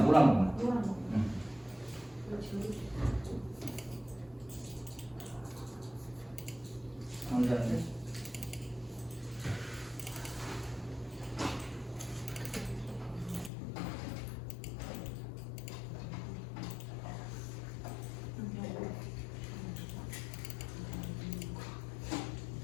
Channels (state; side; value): drops out; right; at 13.5 s